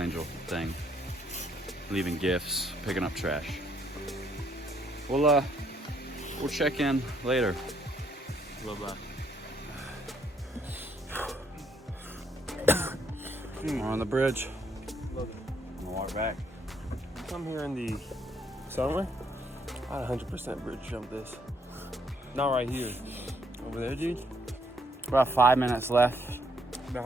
thing. Leaving gifts, picking up trash. We'll check in later. Bye-bye. We're on the bridge. I'm gonna walk back. Come here in the summer, I'd 100% bridge jump this. Not right here. Over there, dude. About 5 minutes left. Been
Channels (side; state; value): both; normal; correlation 0.70